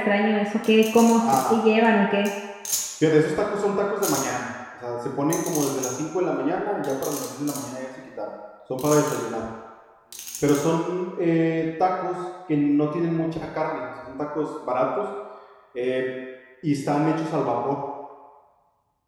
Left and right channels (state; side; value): identical; both; correlation 1.00